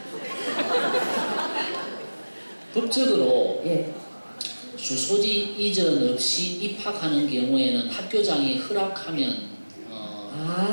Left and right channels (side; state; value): both; inverted; correlation -1.00